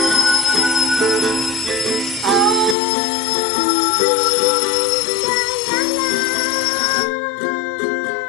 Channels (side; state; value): right; drops out; at 2.8 s